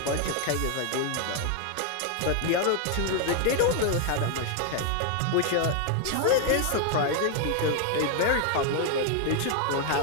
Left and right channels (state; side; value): different; both; correlation 0.00